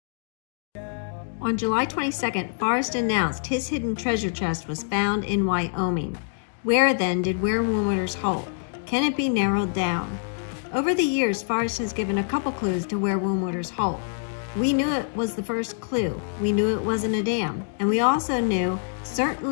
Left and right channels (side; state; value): right; silent; digital silence